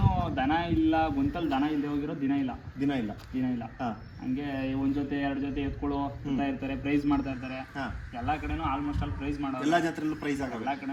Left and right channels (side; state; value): both; identical; correlation 1.00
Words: ದನ ಇಲ್ಲ, ಗೊಂತಲ್ಲಿ ದನ ಇಲ್ಲದೆ ಹೋಗಿರೋ ದಿನ ಇಲ್ಲ. ಹಂಗೆ ಒಂದು ಜೊತೆ 2 ಜೊತೆ ಎತ್ಕೊಳ್ಳೋ ಅಂತ ಇರ್ತಾರೆ, ಪ್ರೈಸ್ ಮಾಡ್ತಾ ಇರ್ತಾರೆ. ಎಲ್ಲ ಕಡೆನೂ ಆಲ್ಮೋಸ್ಟ್ ಆಲ್ ಪ್ರೈಸ್ ಮಾಡೋರು. ಎಲ್ಲ ಜಾತ್ರೆಯಲ್ಲೂ ಪ್ರೈಸ್ ಆಗ ಎಲ್ಲ